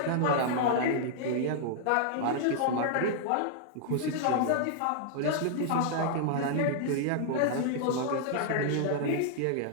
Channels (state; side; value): different; both; correlation -0.01